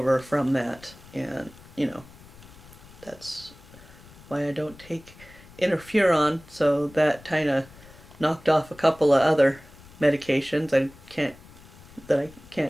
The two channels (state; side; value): noise; left; rumble, 21 dB below the sound